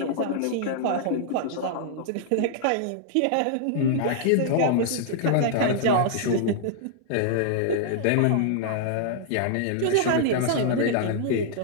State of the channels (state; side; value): different; both; correlation -0.01